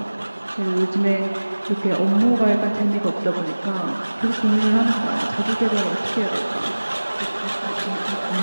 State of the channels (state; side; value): inverted; both; correlation -1.00